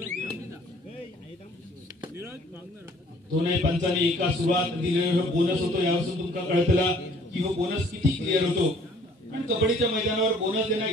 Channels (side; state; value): both; normal; correlation 0.57